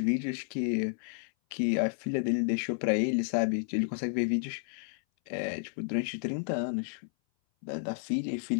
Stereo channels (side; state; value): right; silent; 57 dB below the other